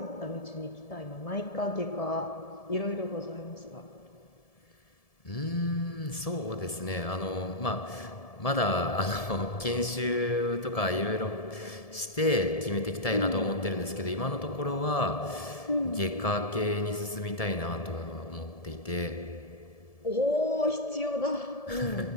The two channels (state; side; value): late; right; 1.7 ms